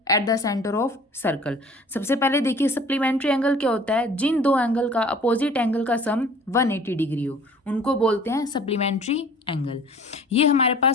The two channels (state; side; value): normal; both; correlation 0.49